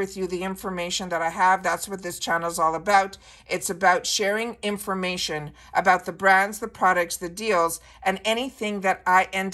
you the information that I have. That's what this channel is all about. It's about sharing information about the brands, the products, the deals, and anything that I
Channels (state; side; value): identical; both; correlation 1.00